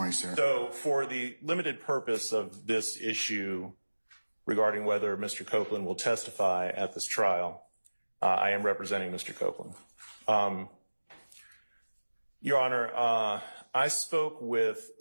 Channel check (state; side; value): inverted; both; correlation -1.00